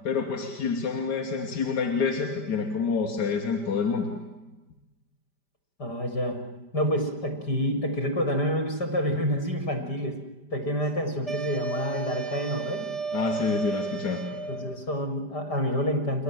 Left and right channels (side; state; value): right; late; 5.1 ms